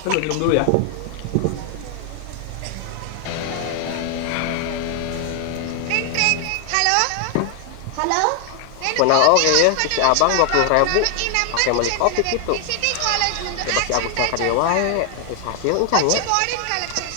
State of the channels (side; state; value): both; different; correlation 0.00